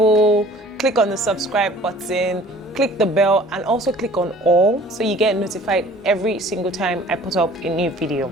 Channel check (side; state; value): both; normal; correlation 0.49